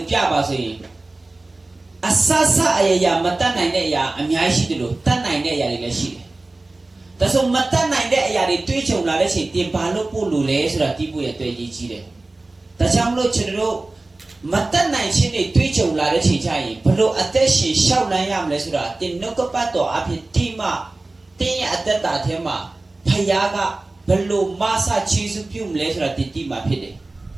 Piaba, so Asasa Aya Matan Nine Ya, and Yashi de Tan Nine Yadi. That's all Matan Nine Yadi Twitch of Ladashi, Timpalo Pulu, so that people at 20. That's how much Chero. Matan Nine Chini Twitch of Ladashi Chai, Palo Ateshi, Shawnayam Lesura, Tinokopato, Apitima, Tin at that Tema, Payaga, Palo Masa Chisupum Lesura Titima Pide.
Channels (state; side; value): quieter; left; 3.1 dB